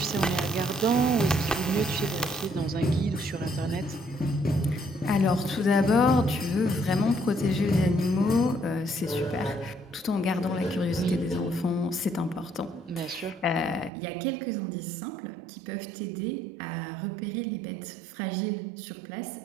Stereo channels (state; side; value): drops out; left; at 13.9 s